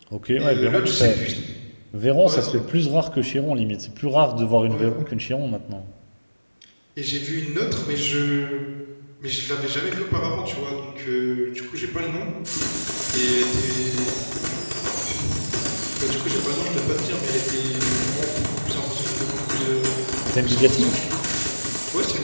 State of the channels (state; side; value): inverted; both; correlation -1.00